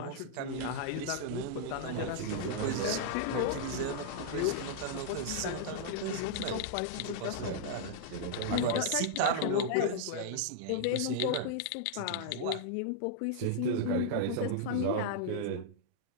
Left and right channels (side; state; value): both; different; correlation -0.01